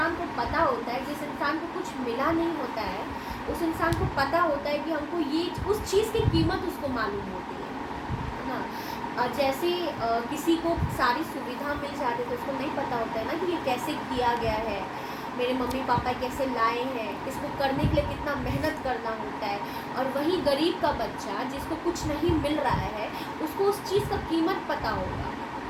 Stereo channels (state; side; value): identical; both; correlation 1.00